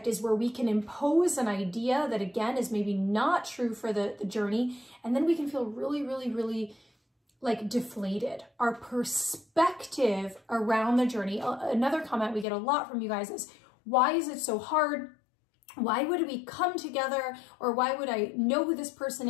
is where we can impose an idea that, again, is maybe not true for the journey, and then we can feel really, really, really like deflated. Our perspective around the journey. Another comment we get a lot from you guys is, why is it so hard? Why would we come together? Or why would I know who this person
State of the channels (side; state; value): right; drops out; at 12.5 s